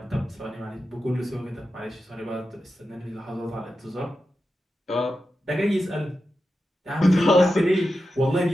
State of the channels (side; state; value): both; normal; correlation 0.91